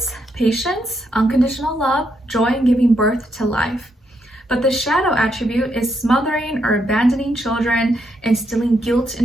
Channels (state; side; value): normal; both; correlation 0.78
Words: patience, unconditional love, joy in giving birth to life. But the shadow attribute is smothering or abandoning children, instilling guilt